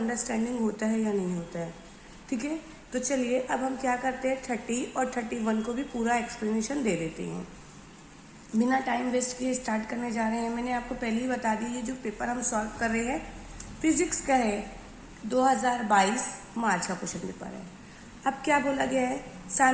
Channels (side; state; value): both; identical; correlation 1.00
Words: होता है या नहीं होता है। ठीक है, तो चलिए अब हम क्या करते हैं, 30 और 31 को भी पूरा एक्सप्लेनेशन दे देते हैं। बिना टाइम वेस्ट किए स्टार्ट करने जा रहे हैं। मैंने आपको पहले ही बता दी, ये जो पेपर हम सॉल्व कर रहे हैं फिजिक्स का है, 2022 मार्च का क्वेश्चन पेपर है। अब क्या बोला गया है,